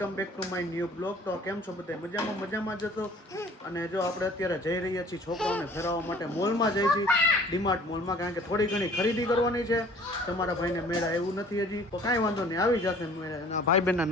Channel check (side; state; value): both; normal; correlation 0.51